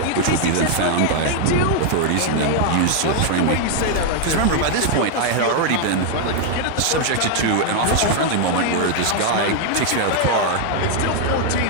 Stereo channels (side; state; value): both; different; correlation 0.00